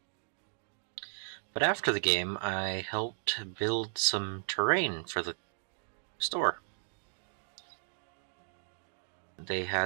after the game, I helped build some terrain for the store. They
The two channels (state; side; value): silent; left; digital silence